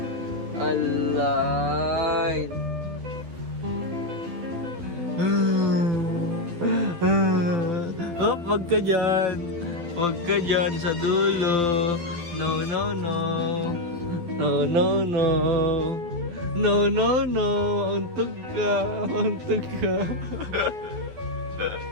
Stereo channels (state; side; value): late; left; 12 ms